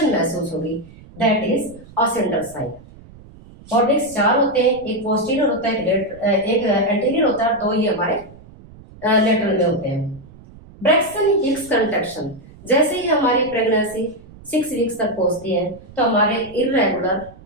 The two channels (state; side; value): noise; right; rumble, 21 dB below the sound